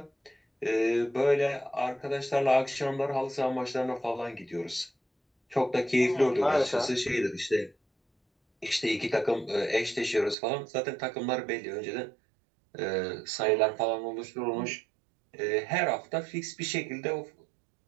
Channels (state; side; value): drops out; left; at 10.4 s